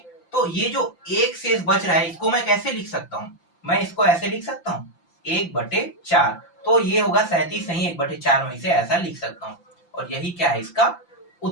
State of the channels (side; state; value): right; late; 5.8 ms